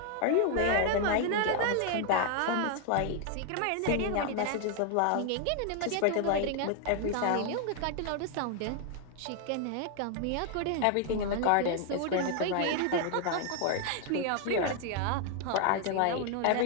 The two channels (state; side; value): different; both; correlation 0.00